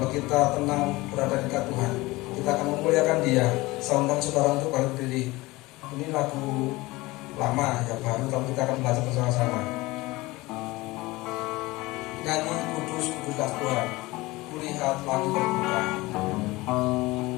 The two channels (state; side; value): quieter; right; 20.8 dB